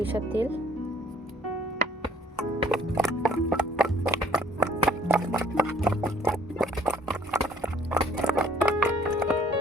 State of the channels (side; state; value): both; normal; correlation 0.58